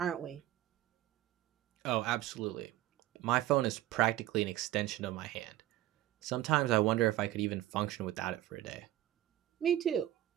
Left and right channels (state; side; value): quieter; left; 14.5 dB